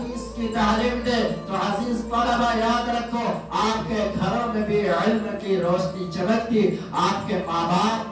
کی تعلیم دے، تو عزیز طلبہ یاد رکھو آپ کے گھروں میں بھی علم کی روشنی چمکتی، آپ کے ماں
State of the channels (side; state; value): both; identical; correlation 1.00